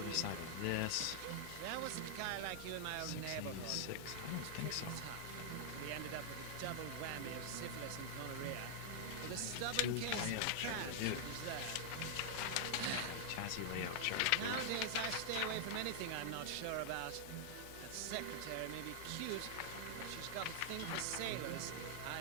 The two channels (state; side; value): different; both; correlation 0.00